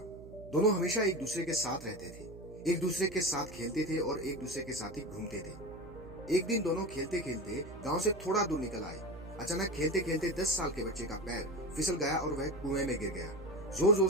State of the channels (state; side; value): noise; right; hum, 16 dB below the sound